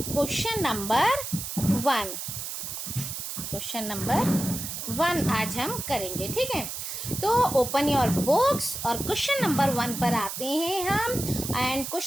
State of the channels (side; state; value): right; noise; hiss, 6 dB below the sound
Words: question number 1 आज हम करेंगे। ठीक है, तो ओपन योर बुक्स और क्वेश्चन नंबर 1 पर आते हैं हम। And